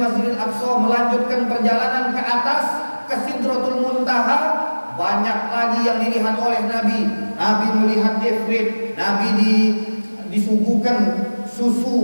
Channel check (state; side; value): inverted; both; correlation -1.00